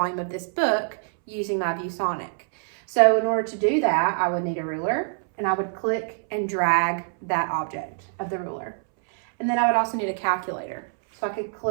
of this book using my ViewSonic. So in order to do that, I would need a ruler, and I would click and drag that object of the ruler. And then I would also need a calculator. So I could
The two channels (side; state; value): left; silent; 62 dB below the other